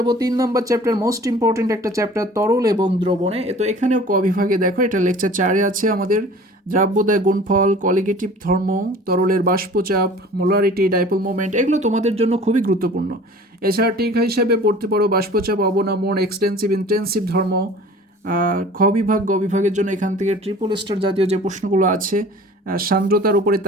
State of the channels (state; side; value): normal; both; correlation 0.45